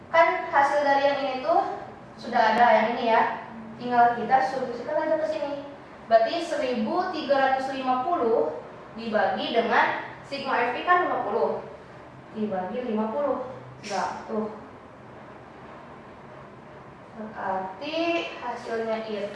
Kan hasil dari yang ini tuh sudah ada yang ini ya, tinggal kita substitusikan aja ke sini. Berarti 1350 dibagi dengan sigma FI kan 50 dibagi 50. Nah, tuh. Berarti hasilnya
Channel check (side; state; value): both; identical; correlation 1.00